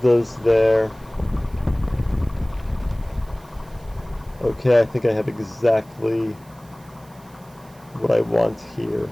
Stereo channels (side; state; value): right; noise; hiss, 28 dB below the sound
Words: there. Okay, I think I have exactly what I want here.